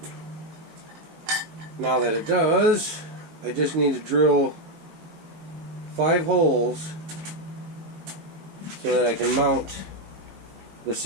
Now that it does, I just need to drill 5 holes so that I can mount the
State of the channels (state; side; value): late; left; 19 ms